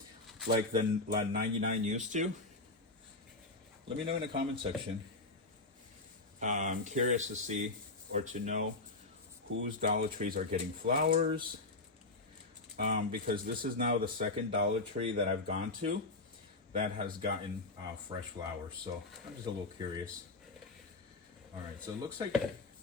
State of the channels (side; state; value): right; quieter; 3.2 dB